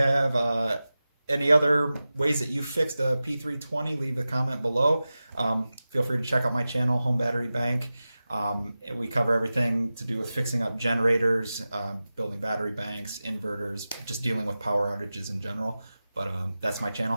any other ways that you fixed a P320, leave a comment below. Feel free to check out my channel, Home Battery Bank. We cover everything to do with fixing up generators, building battery banks, inverters, just dealing with power outages in general. But that's my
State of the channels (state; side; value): inverted; both; correlation -0.95